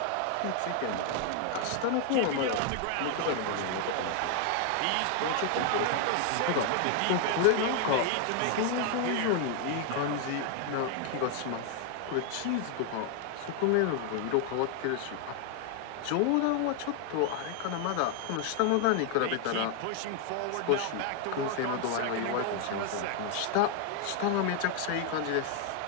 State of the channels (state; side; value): different; both; correlation 0.00